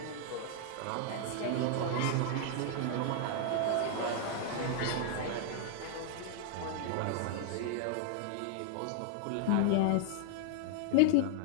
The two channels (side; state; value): both; different; correlation 0.00